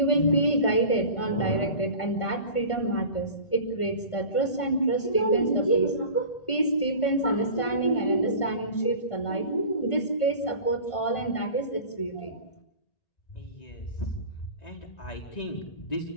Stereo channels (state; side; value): late; right; 1.5 ms